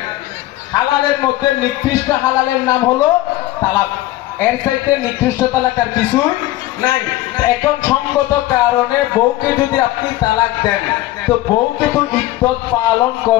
হালালের মধ্যে নিকৃষ্ট হালালের নাম হলো তালাক, এর চাইতে নিকৃষ্ট তালাক আর কিছুই নাই। এখন সঙ্গত কারণে বউকে যদি আপনি তালাক দেন, তো বউকে তো ইদ্যত পালন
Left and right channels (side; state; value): right; quieter; 16.3 dB